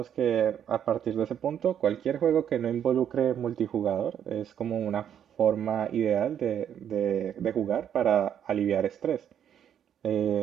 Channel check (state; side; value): quieter; left; 9.3 dB